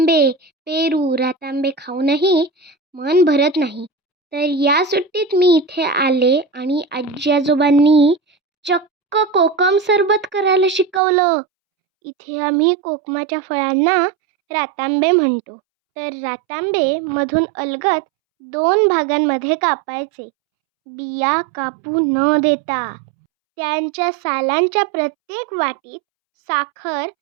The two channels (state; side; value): drops out; left; at 11.0 s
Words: पेरू, रातांबे खाऊनही मन भरत नाही. तर या सुट्टीत मी इथे आले आणि आजी आजोबांनी चक्क कोकम सरबत करायला शिकवलं. इथे आम्ही कोकमाच्या फळांना रातांबे म्हणतो. तर रातांबे मधून अलगद 2 भागांमध्ये कापायचे, बिया कापू न देता. त्यांच्या सालांच्या प्रत्येक वाटीत साखर